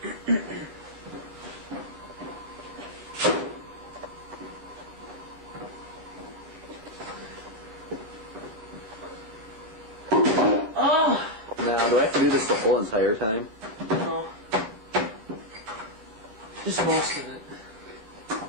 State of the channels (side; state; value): left; late; 19 ms